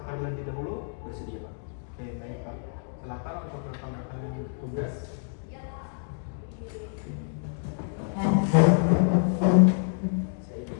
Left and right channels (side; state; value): right; silent; digital silence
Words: terlebih dahulu? Bersedia Pak. Oke, baik Pak. Silakan untuk rekan-rekan tugas. Saya di